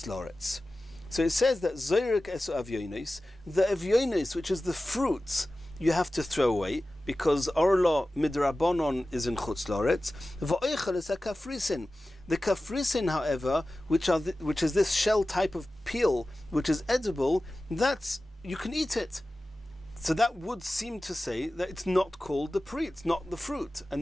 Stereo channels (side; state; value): both; normal; correlation 0.95